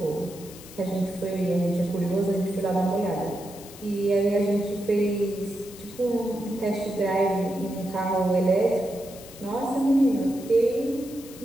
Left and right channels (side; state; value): left; noise; hiss, 18 dB below the sound